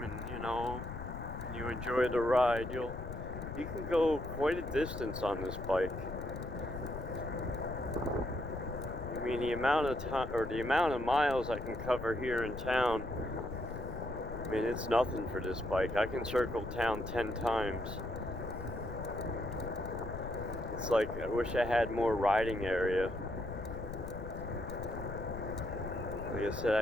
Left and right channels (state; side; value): noise; left; rumble, 8 dB below the sound